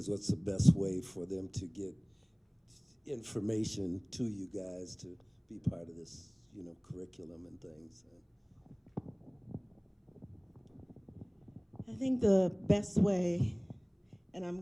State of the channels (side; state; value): both; identical; correlation 1.00